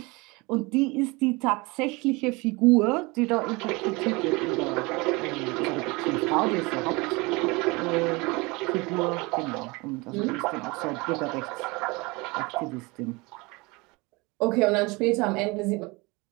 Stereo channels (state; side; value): quieter; left; 25.3 dB